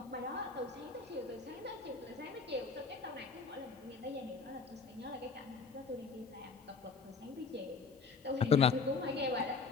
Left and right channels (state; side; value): quieter; right; 4.7 dB